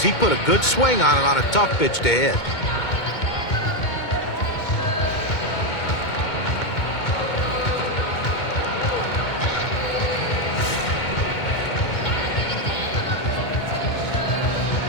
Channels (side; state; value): right; late; 2.2 ms